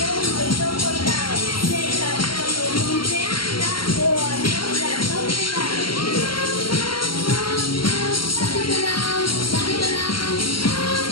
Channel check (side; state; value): right; late; 0.73 ms